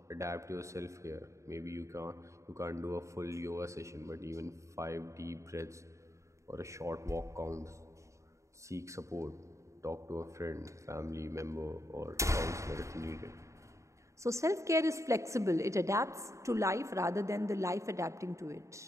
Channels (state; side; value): late; left; 0.14 ms